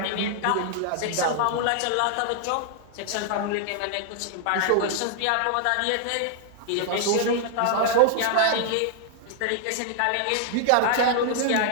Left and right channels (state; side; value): different; both; correlation -0.01